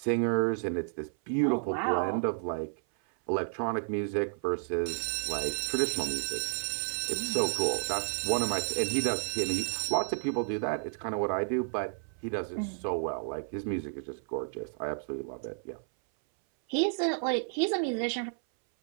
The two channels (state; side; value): silent; left; 57 dB below the other